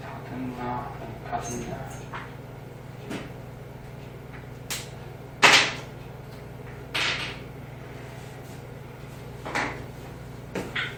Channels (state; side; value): identical; both; correlation 1.00